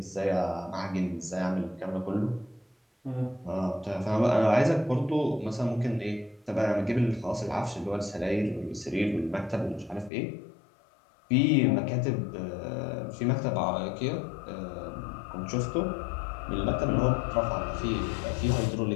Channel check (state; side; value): drops out; right; at 10.1 s